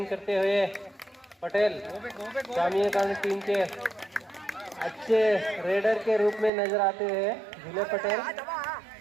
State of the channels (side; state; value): left; drops out; at 6.5 s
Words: करते हुए पटेल स्वामी विवेकानंद टीम के अच्छे रेडर के रूप में नजर आते हैं जुमले पटेल.